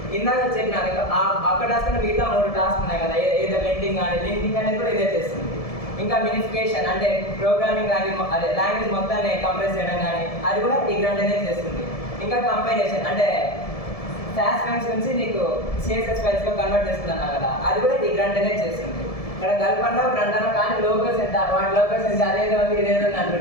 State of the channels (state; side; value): late; right; 1.7 ms